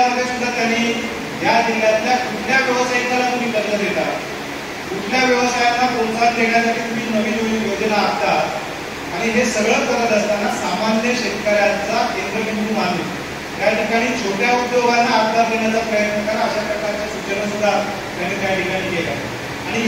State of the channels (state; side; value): identical; both; correlation 1.00